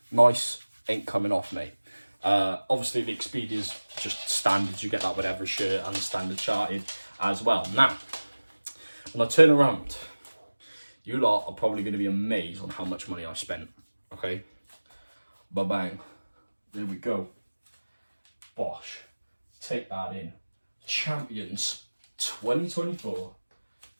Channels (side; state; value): both; inverted; correlation -1.00